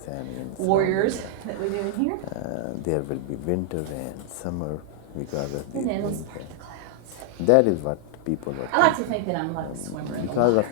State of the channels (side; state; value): both; different; correlation 0.00